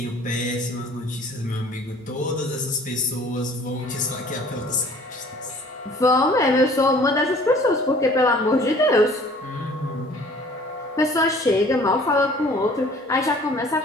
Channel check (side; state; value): both; normal; correlation 0.51